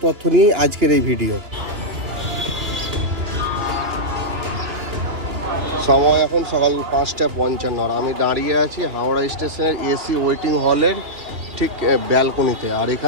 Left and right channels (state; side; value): late; left; 2.9 ms